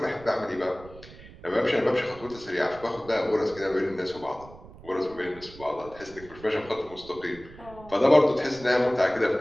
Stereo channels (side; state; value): right; noise; rumble, 19 dB below the sound